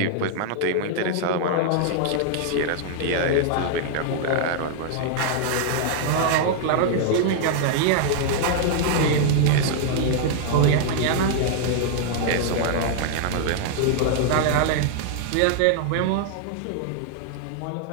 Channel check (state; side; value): different; both; correlation -0.01